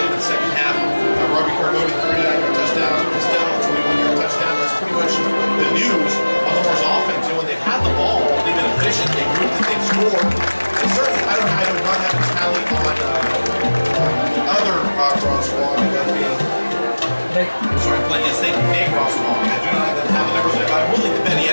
into the second half. Robbie Carboni, 39-yard touchdown. Costello, 21-yard touchdown. That's pretty much the news on the Mars offense. You know, when they've had the ball, they've been efficient. They've moved it, they've scored. And certainly, I do not have a tally on the other Ross Walker. Sorry, yes, thank you, Nate Rosswall. I do not have the numbers, but I'm willing to bet he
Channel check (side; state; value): both; inverted; correlation -1.00